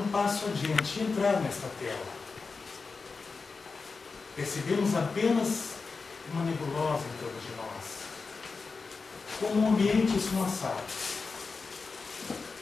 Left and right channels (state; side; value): quieter; right; 4.5 dB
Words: passo adiante e entrar nesta tela. Percebemos apenas uma nebulosa em torno de nós, como um ambiente esfumaçado.